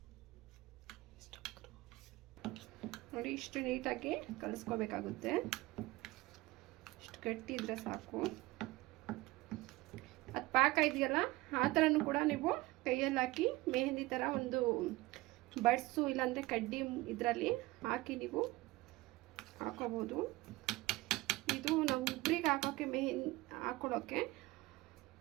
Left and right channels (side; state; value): left; quieter; 19.8 dB